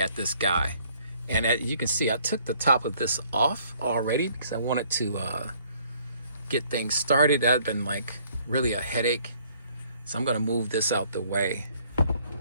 this guy. And you can see I took the top of this off already because I wanted to get things started. That had been like really a headache. So I'm gonna move this out the way.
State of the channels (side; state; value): both; inverted; correlation -0.62